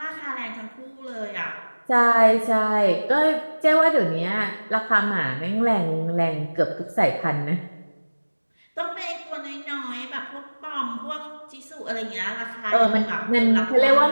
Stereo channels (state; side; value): inverted; both; correlation -1.00